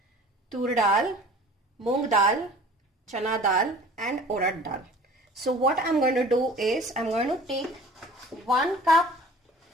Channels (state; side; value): normal; both; correlation 0.45